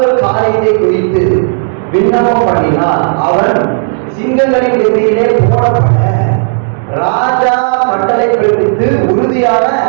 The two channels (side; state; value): left; silent; digital silence